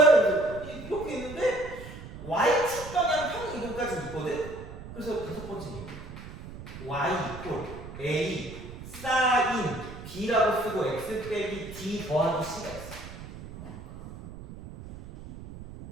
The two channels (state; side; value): noise; right; rumble, 13 dB below the sound